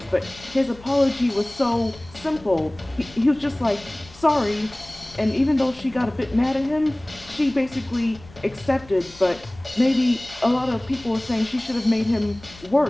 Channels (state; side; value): noise; left; rumble, 22 dB below the sound